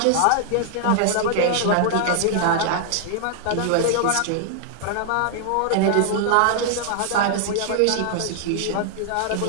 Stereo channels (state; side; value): different; both; correlation 0.00